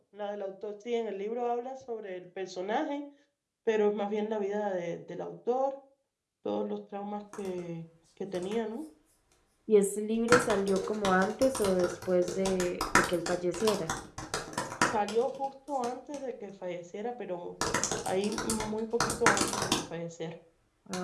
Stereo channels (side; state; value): both; identical; correlation 1.00